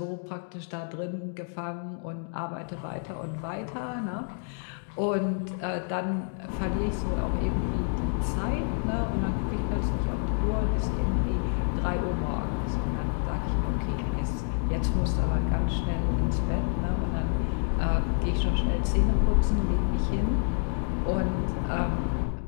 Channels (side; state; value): right; silent; 57 dB below the other